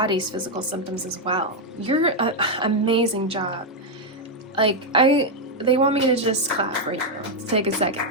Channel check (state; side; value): normal; both; correlation 0.01